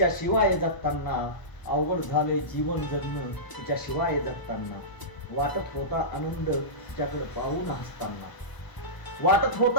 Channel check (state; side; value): late; right; 1.0 ms